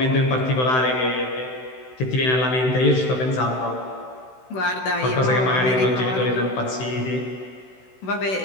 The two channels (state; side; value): late; right; 16 ms